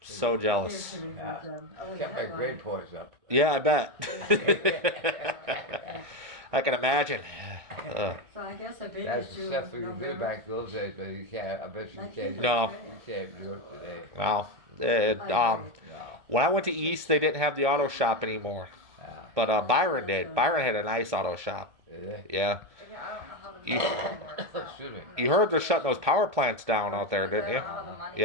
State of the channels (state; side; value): late; left; 1.6 ms